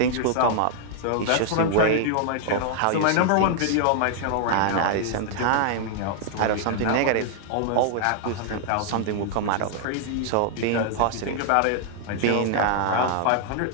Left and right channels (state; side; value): different; both; correlation 0.00